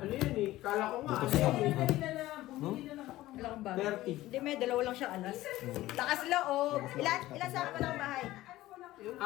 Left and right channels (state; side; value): quieter; right; 16.3 dB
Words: yan eh? Akala ko nga, Butas ano yan lang. eh. Bumili na lang. Bumili na lang ako ng Wala kang bahay. 30. Hindi, may dalawa lang siyang alas. Lakas loob. Ilan sa akin pa lang bahay?